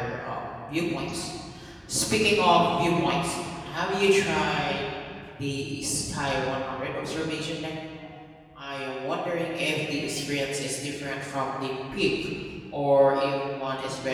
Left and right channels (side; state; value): both; identical; correlation 1.00